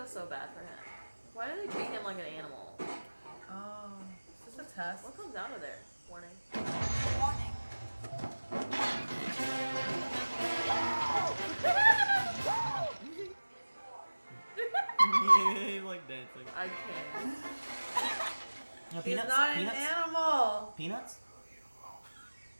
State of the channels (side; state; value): both; inverted; correlation -1.00